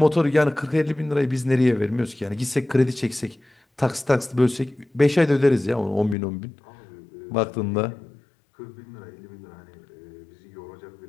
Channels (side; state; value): right; drops out; at 6.2 s